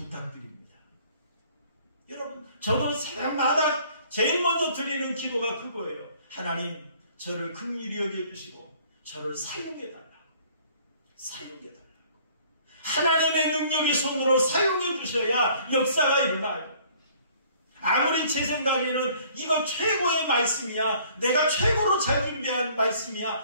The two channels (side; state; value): both; inverted; correlation -0.57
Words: 여러분, 저도 새벽마다 제일 먼저 드리는 기도가 그거예요. 하나님, 저를 긍휼히 여겨주시고 저를 사용해달라고. 하나님의 능력의 손으로 사용해 주셔야 역사가 일어나요. 아무리 제 생각에는 이거 최고의 말씀이야, 내가 최고로 잘 준비한